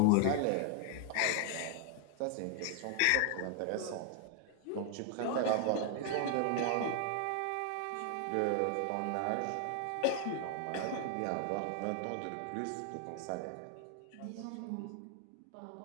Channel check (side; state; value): both; different; correlation 0.00